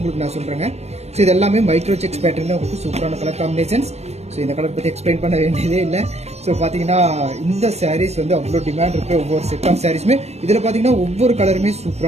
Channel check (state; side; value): late; left; 0.31 ms